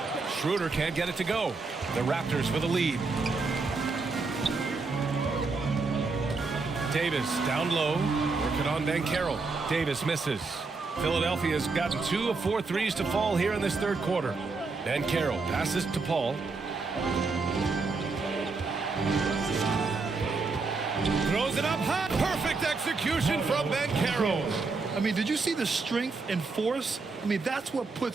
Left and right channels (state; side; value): quieter; left; 4.1 dB